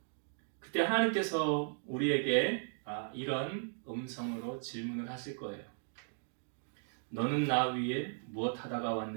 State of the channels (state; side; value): silent; left; digital silence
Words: 그때 하나님께서 우리에게 이런 음성으로 질문을 하실 거예요. 너는 나 위에 무엇 하다가